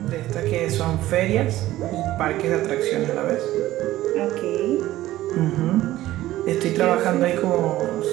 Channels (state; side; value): quieter; left; 15.4 dB